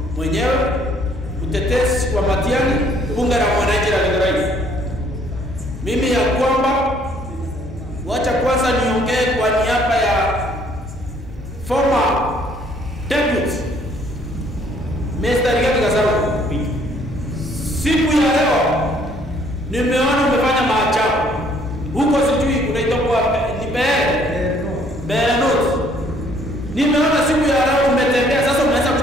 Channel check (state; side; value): normal; both; correlation 0.62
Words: mwenyewe, utetezi wa Matiang'i, bunge la mwananchi la Githurai. Mimi ya kwamba wacha kwanza niongee kwa niaba ya former deputy Mr. Rigathi Gachagua. Siku ya leo nimeona umefanya maajabu huko, sijui unaitoka ni Berenot. Nimeona siku ya leo umetembea, sasa unaweza